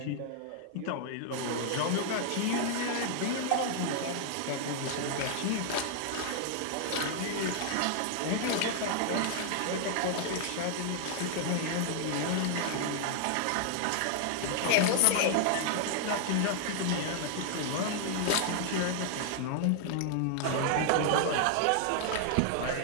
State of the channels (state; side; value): different; both; correlation 0.00